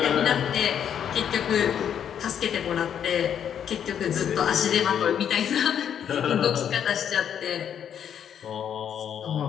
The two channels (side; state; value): right; quieter; 8.8 dB